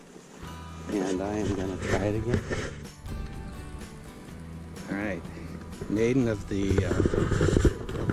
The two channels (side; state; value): both; identical; correlation 1.00